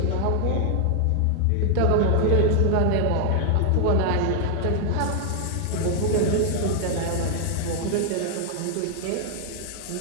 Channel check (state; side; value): different; both; correlation 0.00